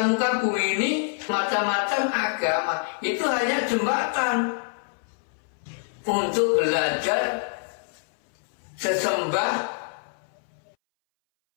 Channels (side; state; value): right; silent; 61 dB below the other